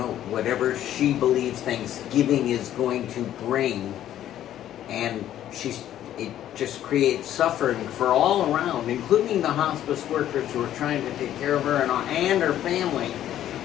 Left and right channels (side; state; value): right; quieter; 11.8 dB